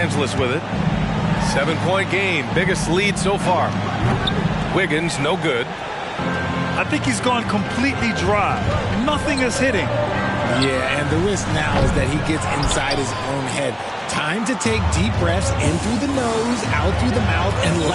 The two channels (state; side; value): identical; both; correlation 1.00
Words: with it. 7-point game, biggest lead so far. Wiggins, no good. I think he's gone completely dry. Nothing is hitting. Yeah, and the risk now is that he gets inside his own head. Time to take deep breaths in through the nose, out through the mouth, and